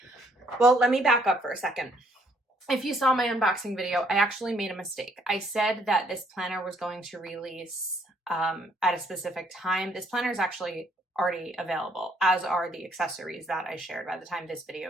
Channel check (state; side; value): normal; both; correlation 0.67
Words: well, let me back up for a second. If you saw my unboxing video, I actually made a mistake. I said that this planner was going to release at a specific time. This planner is actually already available, as are the accessories that I shared by the time this